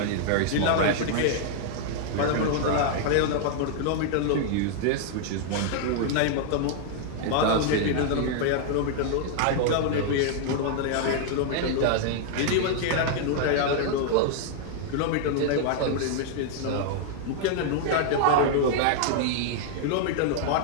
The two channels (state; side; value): different; both; correlation -0.01